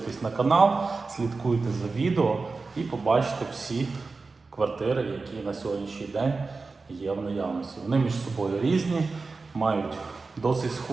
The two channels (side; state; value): left; quieter; 4.0 dB